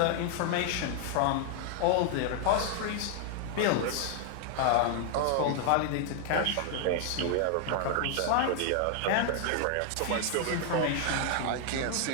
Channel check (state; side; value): different; both; correlation 0.00